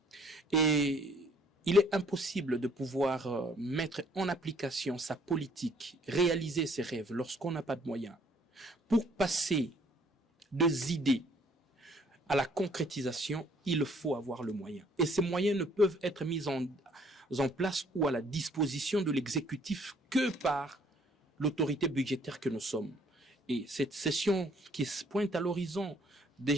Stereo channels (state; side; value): normal; both; correlation 0.61